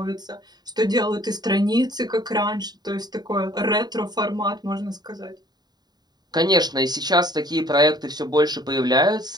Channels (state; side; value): late; left; 0.20 ms